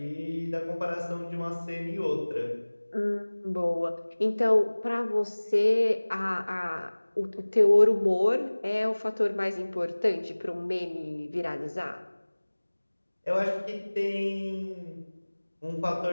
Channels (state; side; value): inverted; both; correlation -1.00